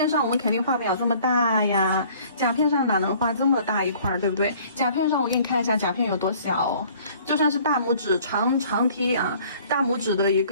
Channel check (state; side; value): inverted; both; correlation -0.54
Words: 上我们肯定画不了这么大呀，甲片上哪能画这么大一块，对不对？甲片上我给你看一下甲片有多小，就算是大拇指长梯啊，大拇指的一